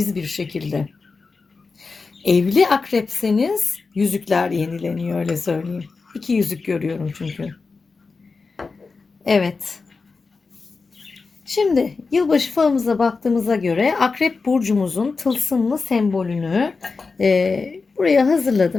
bir şekilde. Evli akrepseniz yüzükler yenileniyor, öyle söyleyeyim. İki yüzük görüyorum çünkü. Evet. Şimdi yılbaşı falımıza baktığımıza göre Akrep Burcumuzun tılsımlı sembolünü buraya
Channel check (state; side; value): quieter; right; 4.3 dB